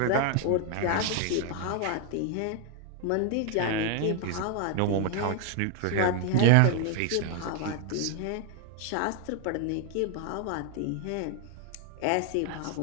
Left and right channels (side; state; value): both; different; correlation 0.00